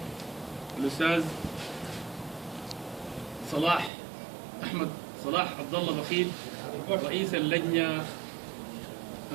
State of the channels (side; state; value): left; drops out; at 3.9 s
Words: الأستاذ أحمد صلاح عبد الله بخيل رئيس اللجنة